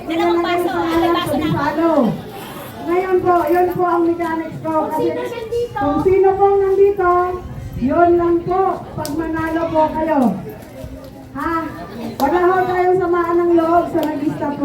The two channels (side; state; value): both; identical; correlation 1.00